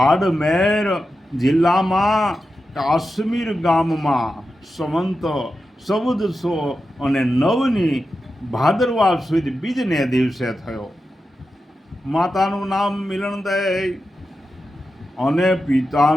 જિલ્લામાં કાશ્મીર ગામમાં સંવંત 1409 ભાદરવા સુદ બીજને દિવસે થયો. માતાનું નામ મિલનદય અને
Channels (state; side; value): normal; both; correlation 0.90